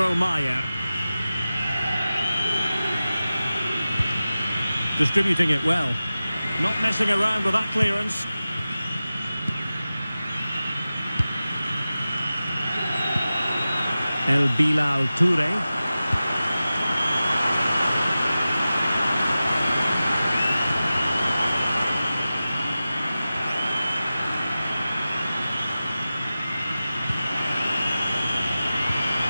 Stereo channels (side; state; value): both; inverted; correlation -0.95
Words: Mayer. Distributing it well. Not messing around with that clearance. El Bilal Toure.